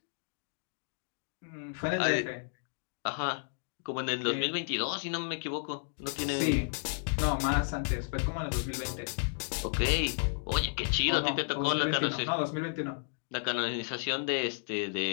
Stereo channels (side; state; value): right; silent; digital silence